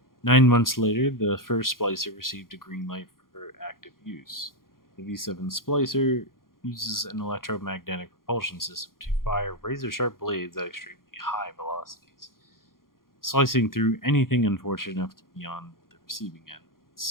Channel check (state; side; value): late; right; 0.91 ms